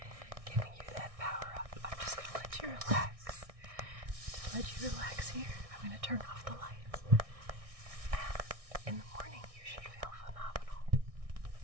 giving you that power up. I'm just going to let you relax. Just let you relax here. I'm going to turn off the lights. And in the morning, you should feel phenomenal. And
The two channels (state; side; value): late; left; 1.6 ms